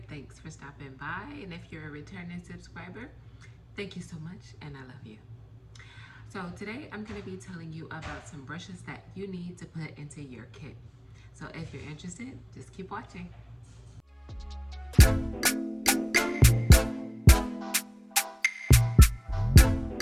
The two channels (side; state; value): both; identical; correlation 1.00